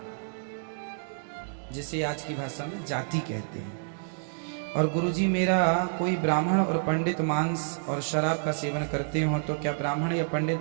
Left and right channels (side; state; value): left; silent; digital silence